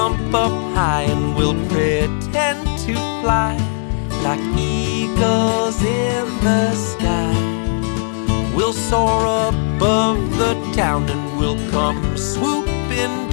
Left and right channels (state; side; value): silent; right; 57 dB below the other